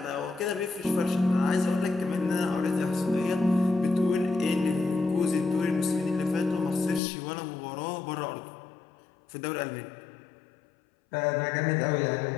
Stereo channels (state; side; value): drops out; right; at 7.0 s